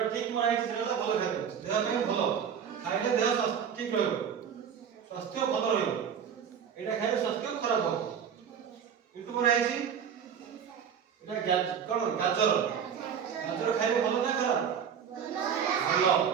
ঠিক মনে হইছে সেটা হলো ভালো খাদ্য, দেহ ପାଇଁ ଭଲ, খাইলে দেহ ঠিক ରହିବ, স্বাস্থ্য ଭଲ ରହିବ। এটা খাইলে স্বাস্থ্য খারাপ হবে। কিন্তু মনে হইছে এটা কোন গাজর, গাজর খাইলে ভালো না খারাপ? ভালো।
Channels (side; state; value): left; quieter; 7.8 dB